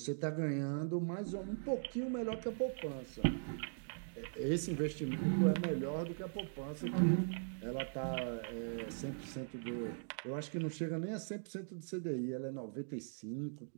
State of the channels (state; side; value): silent; left; digital silence